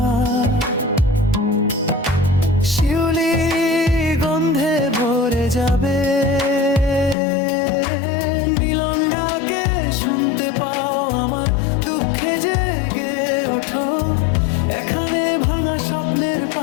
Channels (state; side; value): drops out; right; at 7.2 s